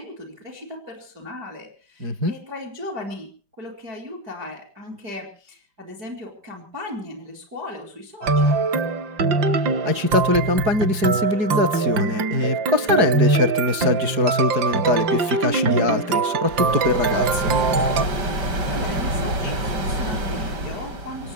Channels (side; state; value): left; late; 5.0 ms